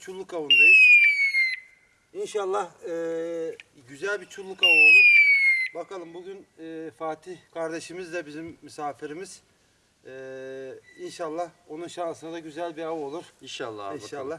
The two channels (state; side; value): identical; both; correlation 1.00